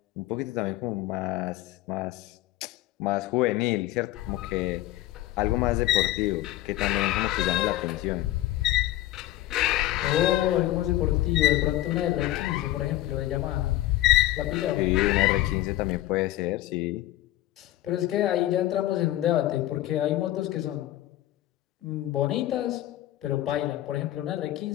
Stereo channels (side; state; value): right; quieter; 15.1 dB